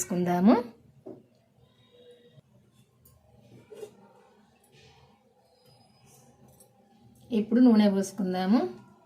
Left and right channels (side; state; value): both; identical; correlation 1.00